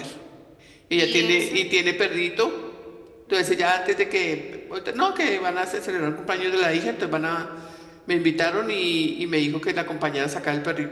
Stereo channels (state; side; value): identical; both; correlation 1.00